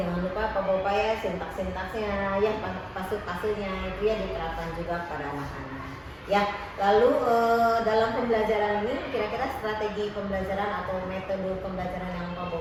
lupa Pak Bopa ya sintaks-sintaksnya ya, pasal-pasalnya itu ya diterapkan juga pada anak-anak. Ya, lalu dalam pembelajaran ini kira-kira strategi pembelajaran atau metode pembelajaran yang Pak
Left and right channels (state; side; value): identical; both; correlation 1.00